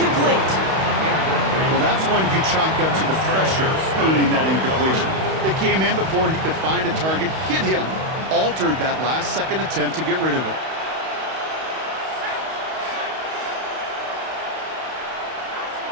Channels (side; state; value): left; late; 31 ms